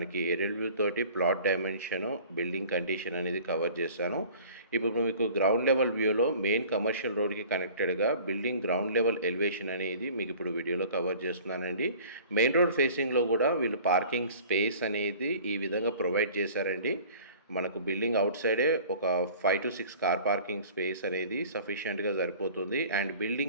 ఏరియల్ వ్యూ తోటి ప్లాట్ డైమెన్షన్, బిల్డింగ్ కండిషన్ అనేది కవర్ చేశాను. ఇప్పుడు మీకు గ్రౌండ్ లెవెల్ వ్యూలో మెయిన్ కమర్షియల్ రోడ్కి కనెక్టెడ్గా బిల్డింగ్ గ్రౌండ్ లెవెల్ ఎలివేషన్ అనేది మీకు ఇప్పుడు వీడియోలో కవర్ చేస్తున్నానండి. మెయిన్ రోడ్ ఫేసింగ్లో కూడా వీళ్ళు పార్కింగ్ స్పేస్ అనేది ఈ విధంగా ప్రొవైడ్ చేశారండి. మనకు బిల్డింగ్ అవుట్ సైడే ఒక 5 to 6 కార్ పార్కింగ్ స్పేస్ అనేది సఫిషియెంట్గా సరిపోతుంది. అండ్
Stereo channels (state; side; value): inverted; both; correlation -0.47